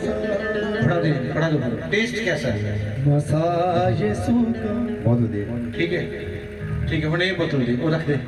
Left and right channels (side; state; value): both; identical; correlation 1.00